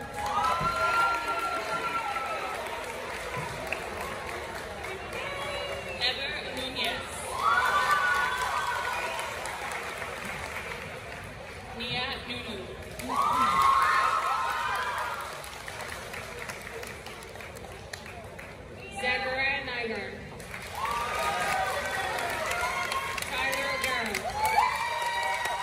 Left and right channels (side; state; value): both; identical; correlation 1.00